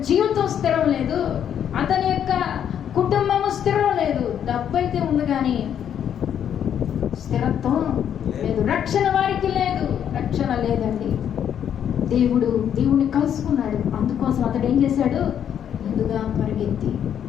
జీవితం స్థిరం లేదు, అతని యొక్క కుటుంబము స్థిరం లేదు. డబ్బు అయితే ఉంది కానీ స్థిరత్వం లేదు. రక్షణ వారికి లేదు, రక్షణ లేదండి. దేవుడిని కలుసుకున్నాడు. అందుకోసం అతడు ఏం చేశాడు? ముందుగా పరిగెత్తి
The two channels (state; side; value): quieter; right; 9.2 dB